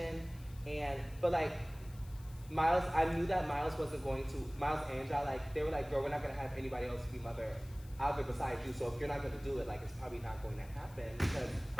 But like Miles, I knew that Miles wasn't going to. Miles and Ja, like, they were like, "Girl, we're not gonna have anybody else be mother out there besides you. So if you're not gonna do it, like, it's probably not going to happen because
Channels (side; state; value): left; noise; hiss, 24 dB below the sound